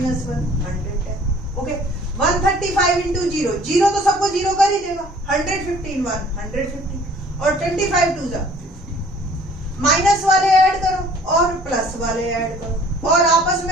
110। ओके, 135 इंटू 0, 0 तो सबको 0 कर ही देगा, 115 1 150 और 25 2 माइनस वाले ऐड करो और प्लस वाले ऐड करो और आपस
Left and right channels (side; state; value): both; normal; correlation 0.54